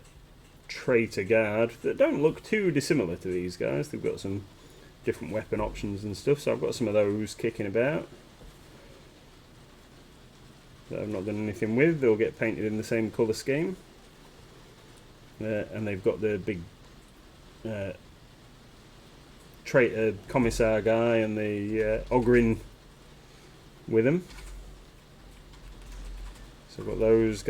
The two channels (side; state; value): both; identical; correlation 1.00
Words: Traitor guard that don't look too dissimilar to these guys. They've got some different weapon options and stuff, so I've got some of those kicking about that I've not done anything with. They'll get painted in the same colour scheme, and they've got the big Traitor Commissar guy and the Ogrin with them. So I've got those